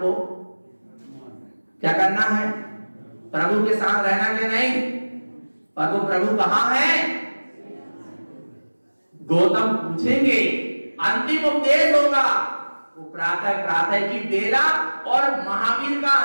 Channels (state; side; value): inverted; both; correlation -1.00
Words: क्या करना है? प्रभु के साथ रहना के नहीं। पर वो प्रभु कहां है? गौतम पूछेंगे, अंतिम उपदेश होगा वो प्रातः की बेला, और महावीर का